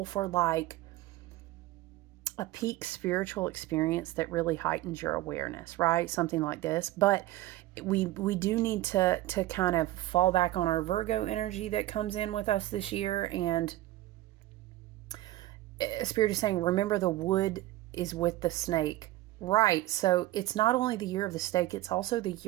for like a peak spiritual experience that really heightens your awareness, right? Something like this. But we do need to kind of fall back on our Virgo energy that comes in with us this year. And Spirit is saying, remember the wood is with the snake. Right. So it's not only the year of the snake, it's also the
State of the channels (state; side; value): quieter; left; 16.3 dB